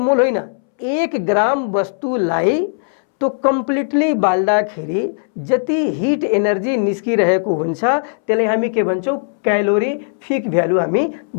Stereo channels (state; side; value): silent; right; 66 dB below the other